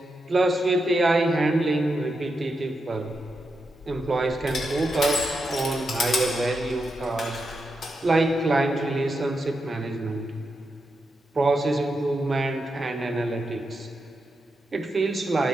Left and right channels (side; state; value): both; normal; correlation 0.86